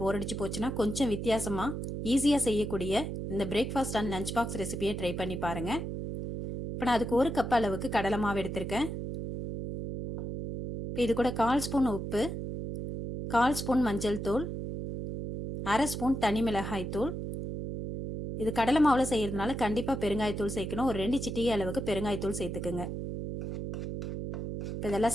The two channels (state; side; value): noise; right; hum, 5 dB below the sound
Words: அடிச்சு போச்சுன்னா கொஞ்சம் வித்தியாசமா ஈஸியாக செய்யக்கூடிய இந்த பிரேக்ஃபாஸ்ட் அண்ட் லஞ்ச் பாக்ஸ் ரெசிபியை ட்ரை பண்ணி பாருங்க. இப்போ நான் அதுக்கு 1 கப் அளவுக்கு கடலை மாவு எடுத்திருக்கேன். இப்போ இது கூட 1/4 ஸ்பூன் உப்பு, 1/4 ஸ்பூன் மஞ்சள் தூள், 1/2 ஸ்பூன் தனி மிளகாய் தூள். இது கடலை மாவில் செய்யறதுனால கண்டிப்பாக பெருங்காயத்தூள் சேர்க்கணும். ஒரு 2 சிட்டிகை அளவுக்கு பெருங்காயத்தூள் சேர்த்துக்குங்க. இப்போ இதெல்லாம்